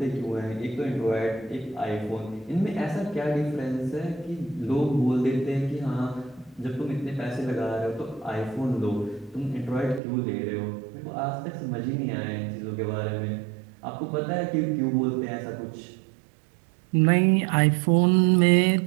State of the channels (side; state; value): left; drops out; at 10.0 s